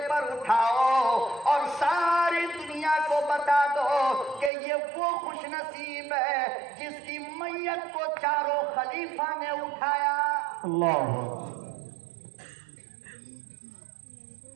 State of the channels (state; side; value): drops out; left; at 4.5 s